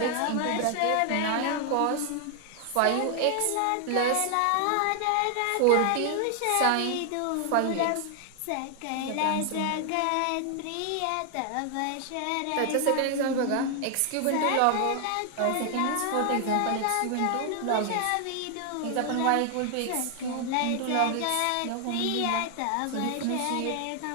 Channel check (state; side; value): different; both; correlation 0.00